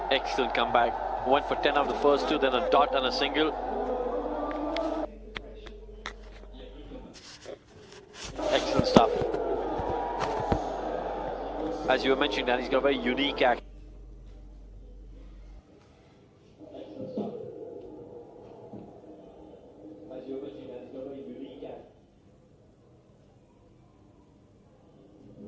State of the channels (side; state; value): both; identical; correlation 1.00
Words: Excellent comeback. Went for 10 of the first 2, then a dot and a single. Excellent stuff. As you were mentioning, Dan, he's got a very unique action.